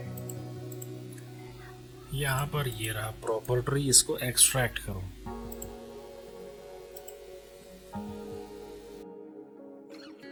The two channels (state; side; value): identical; both; correlation 1.00